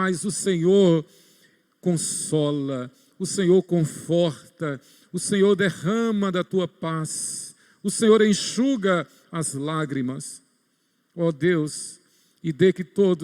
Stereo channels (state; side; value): identical; both; correlation 1.00